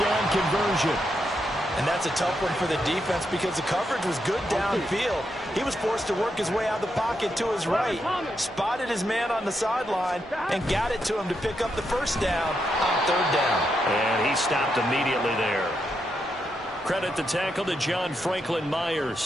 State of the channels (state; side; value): normal; both; correlation 0.82